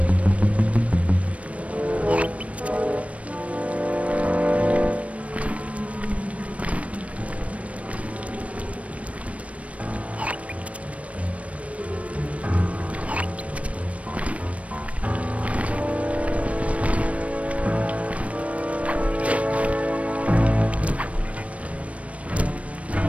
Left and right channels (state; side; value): late; left; 0.065 ms